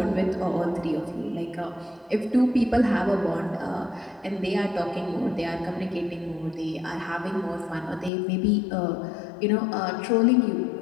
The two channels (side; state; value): right; drops out; at 8.1 s